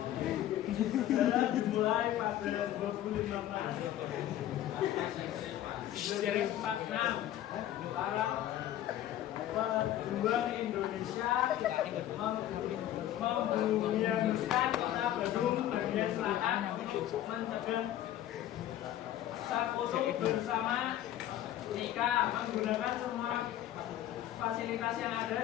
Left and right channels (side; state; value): right; quieter; 12.5 dB